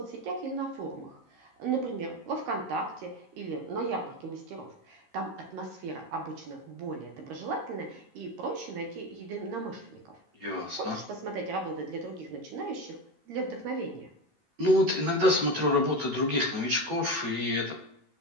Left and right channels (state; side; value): late; left; 13 ms